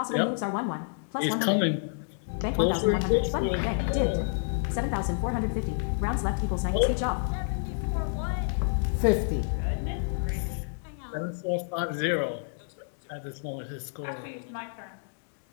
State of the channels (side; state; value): right; silent; digital silence